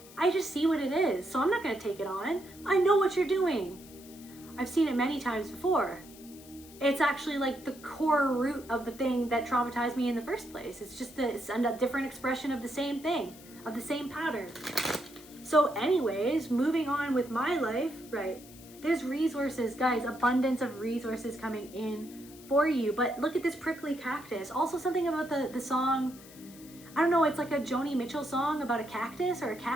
I just see what it is, so I'm not gonna take it on. I know what you're doing. I've seen it many times before. It's actually like the core root of the thing that traumatized me in the first place. It's just it's a different expression of the same thing, of the same pattern. So anyways, moving on with my life, right? There's resources, guys, abundance of resources coming in for you. But look at this prickly cactus. Also something about the song, I don't know, it's like a Joni Mitchell song about a cactus or a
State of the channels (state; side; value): noise; left; hiss, 20 dB below the sound